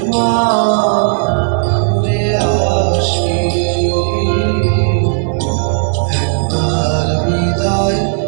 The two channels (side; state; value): left; silent; digital silence